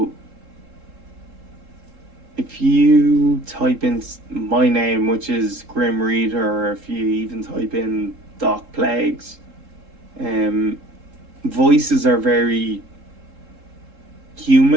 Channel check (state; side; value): late; left; 3.7 ms